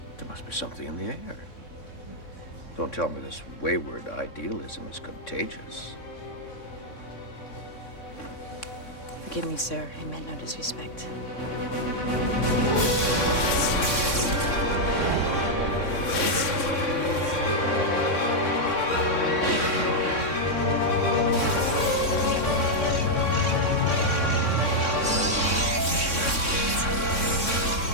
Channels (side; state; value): right; late; 3.6 ms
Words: There must be something in the air. Don't tell me this wayward idealism is contagious. Forgive me, sir. I meant no disrespect.